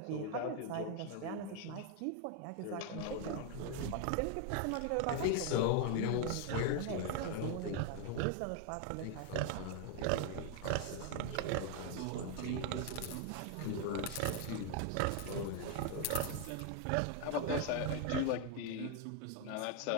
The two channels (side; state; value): both; different; correlation 0.00